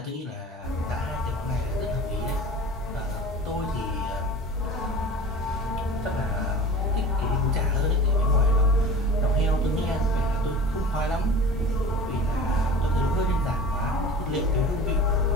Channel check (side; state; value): both; normal; correlation 0.38